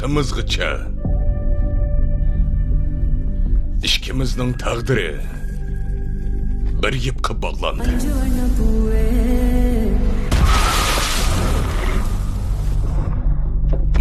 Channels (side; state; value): both; identical; correlation 1.00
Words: ikkimizning taqdiri bir yipqa bog'landi.